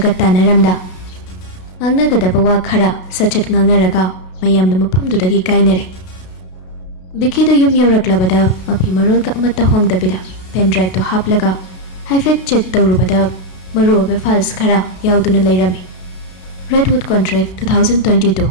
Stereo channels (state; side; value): late; right; 32 ms